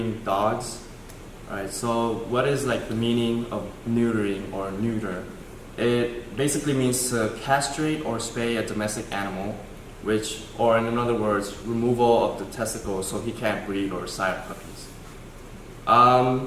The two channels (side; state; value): both; identical; correlation 1.00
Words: dogs. Alright, so what is like the meaning of neutering or neuter? It basically means to castrate or spay a domestic animal, which, or in other words, removal of the testicles so he can't breed or sire puppies.